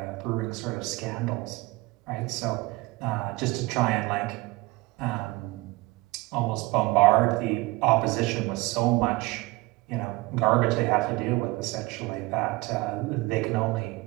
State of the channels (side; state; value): left; quieter; 22.3 dB